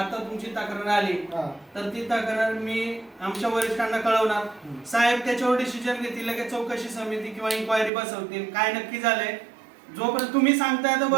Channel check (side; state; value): left; drops out; at 7.9 s